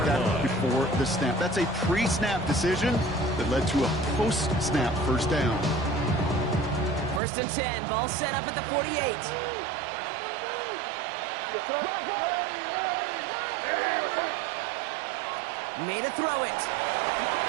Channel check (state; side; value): drops out; left; at 7.2 s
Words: that before the snap. That's a pre-snap decision that led to a post-snap first down. First and 10, ball set up at the 48. Made a throw it.